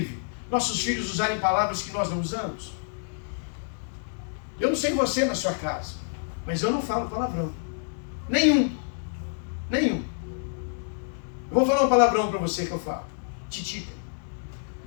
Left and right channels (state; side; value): silent; right; digital silence